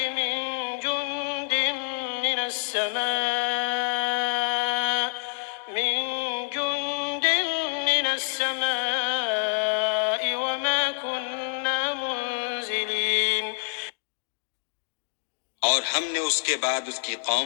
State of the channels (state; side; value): silent; right; digital silence